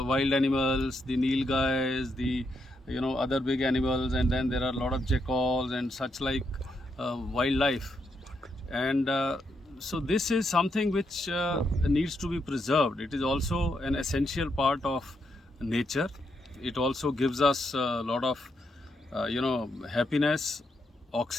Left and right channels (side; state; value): both; normal; correlation 0.80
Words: animals, the nilgais, the other big animals, and then there are a lot of jackals and such like wildlife. And so this is something which needs to be preserved. It is also an essential part of nature. It also gives us a lot of happiness,